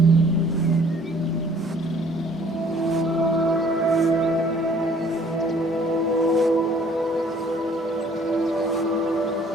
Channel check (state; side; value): normal; both; correlation 0.57